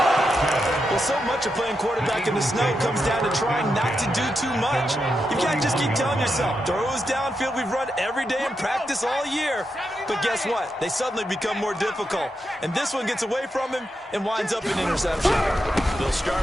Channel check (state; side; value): normal; both; correlation 0.85